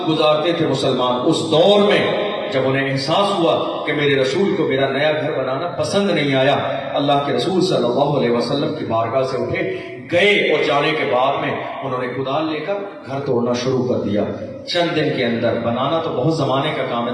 گزارتے تھے مسلمان۔ اس دور میں جب انہیں احساس ہوا کہ میرے رسول کو میرا نیا گھر بنانا پسند نہیں آیا، اللہ کے رسول صلی اللہ علیہ وسلم کی بارگاہ سے اٹھے گئے اور جانے کے بعد میں انہوں نے کدال لے کر گھر توڑنا شروع کر دیا۔ چند دن کے اندر، بنانا تو بہت زمانے کا کام ہے،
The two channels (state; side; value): identical; both; correlation 1.00